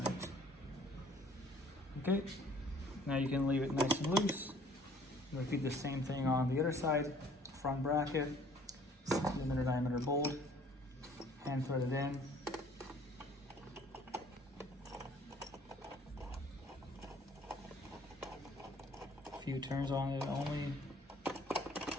Okay, now you can leave it nice and loose. Repeat the same thing on the other side. Front bracket, 6 millimeter diameter bolt, hand thread it in. A few turns on it only,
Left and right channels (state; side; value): normal; both; correlation 0.56